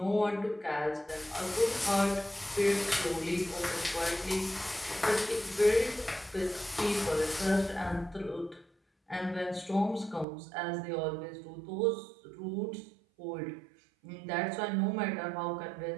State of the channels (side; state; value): left; drops out; at 10.2 s